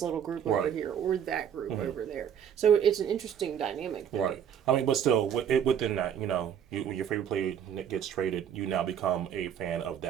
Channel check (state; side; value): quieter; left; 8.8 dB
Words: group over here or that group over there. So it's an interesting dynamic there. Right. I mean, but still, within that, when your favorite player gets traded, you now become a fan of